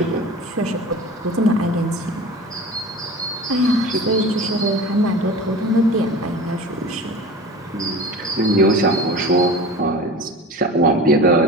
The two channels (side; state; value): both; normal; correlation 0.36